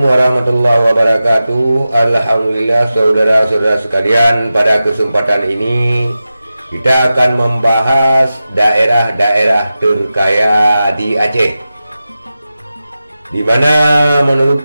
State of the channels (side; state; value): both; inverted; correlation -0.93